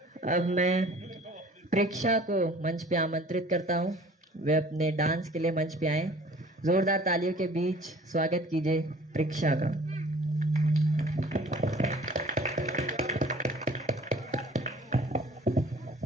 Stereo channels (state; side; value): normal; both; correlation 0.50